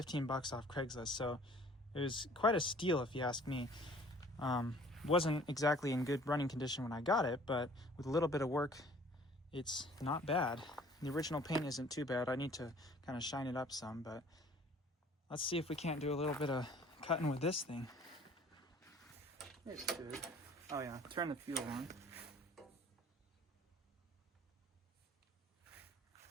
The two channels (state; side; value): normal; both; correlation 0.53